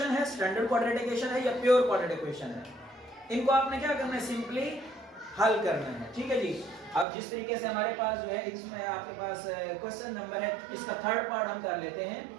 है, स्टैंडर्ड क्वाड्रेटिक इक्वेशन है या प्योर क्वाड्रेटिक इक्वेशन है। इनको आपने क्या करना है, सिंपली हल करना है। ठीक है जी, अब जिस तरीके से हमारे पास जो है इसमें आपके पास क्वेश्चन नंबर है, इसका थर्ड पार्ट हम कर लेते हैं।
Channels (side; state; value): left; drops out; at 7.1 s